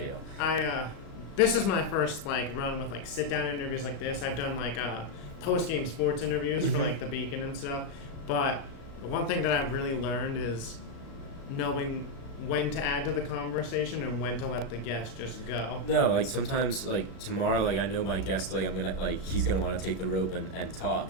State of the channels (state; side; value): late; right; 36 ms